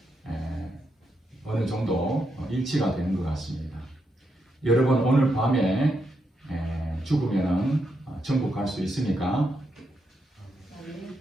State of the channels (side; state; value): both; normal; correlation 0.82